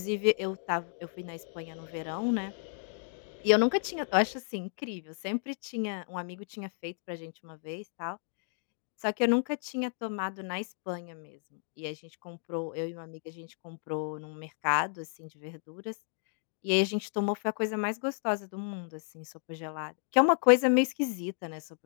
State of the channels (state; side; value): silent; right; 56 dB below the other